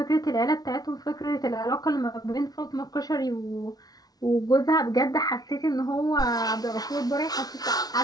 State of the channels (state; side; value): late; right; 0.19 ms